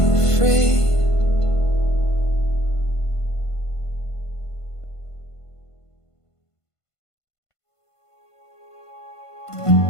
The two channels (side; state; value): right; late; 1.5 ms